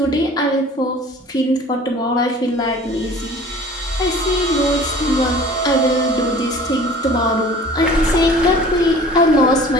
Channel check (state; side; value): normal; both; correlation 0.46